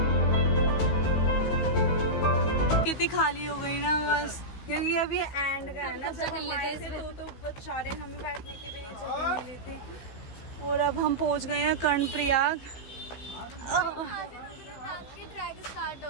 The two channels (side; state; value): right; late; 15 ms